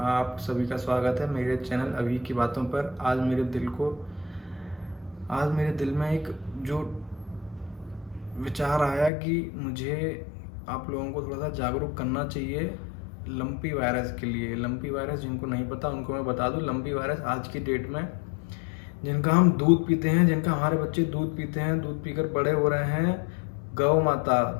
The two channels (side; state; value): right; drops out; at 9.1 s